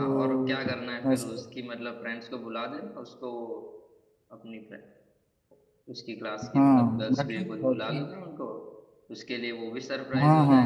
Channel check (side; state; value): both; identical; correlation 1.00